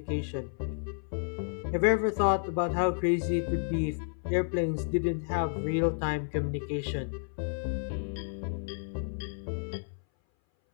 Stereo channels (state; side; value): silent; right; 57 dB below the other